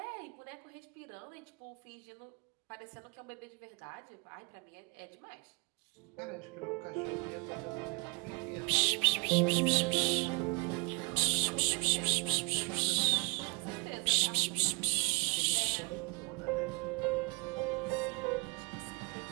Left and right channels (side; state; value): left; quieter; 30.8 dB